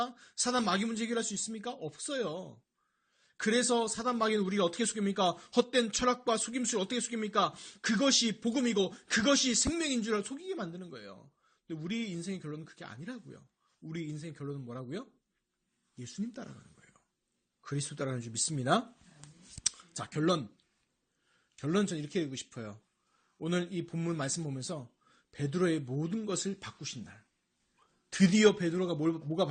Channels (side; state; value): both; identical; correlation 1.00